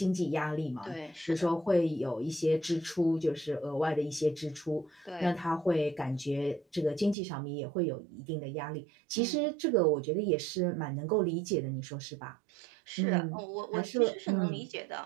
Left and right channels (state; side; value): drops out; left; at 7.2 s